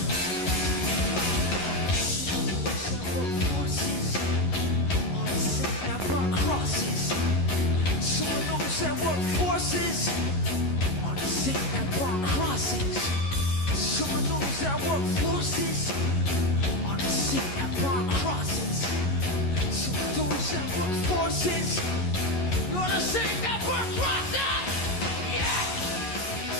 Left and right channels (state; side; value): late; right; 11 ms